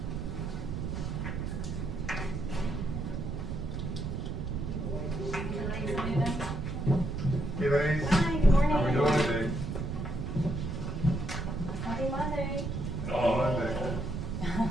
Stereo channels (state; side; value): noise; right; rumble, 3 dB below the sound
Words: Hey, ladies. Hi, good morning. How we doing today? Happy Monday. Monday.